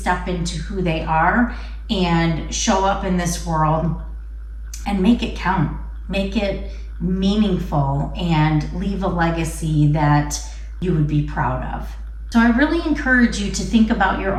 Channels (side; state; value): both; identical; correlation 1.00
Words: into who they are and show up in this world and make it count, make it meaningful, and leave a legacy that you would be proud of. So I really encourage you to think about your